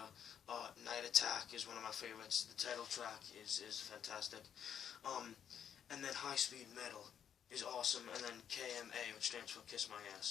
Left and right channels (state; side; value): quieter; right; 8.6 dB